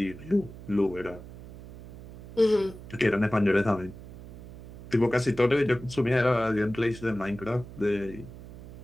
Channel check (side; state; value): right; noise; hum, 16 dB below the sound